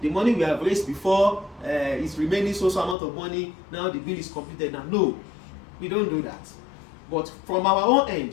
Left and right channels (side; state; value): right; drops out; at 3.0 s